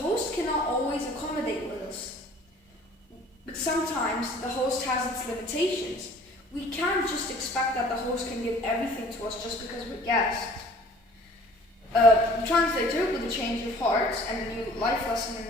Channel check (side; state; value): both; normal; correlation 0.51